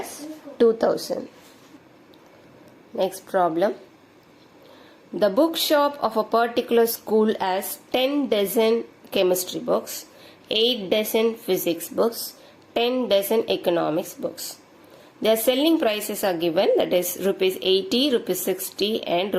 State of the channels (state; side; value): identical; both; correlation 1.00